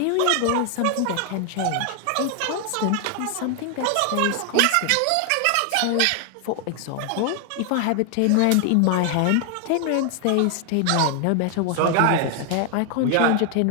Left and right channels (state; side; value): different; both; correlation 0.00